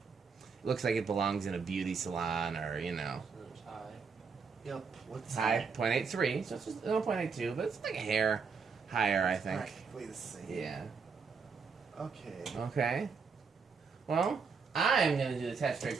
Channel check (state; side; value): quieter; left; 5.4 dB